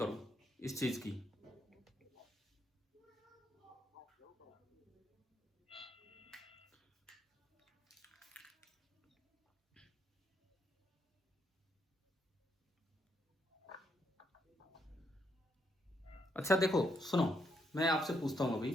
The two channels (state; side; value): normal; both; correlation 0.76